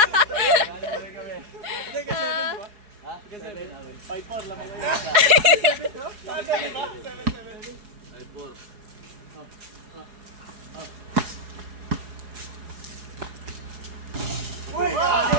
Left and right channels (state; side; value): late; left; 4.8 ms